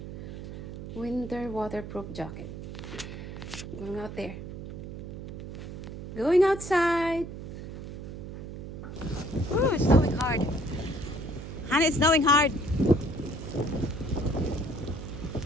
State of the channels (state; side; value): noise; right; hum, 9 dB below the sound